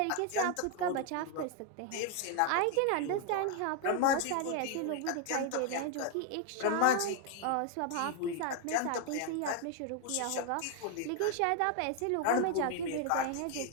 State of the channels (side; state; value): both; different; correlation 0.00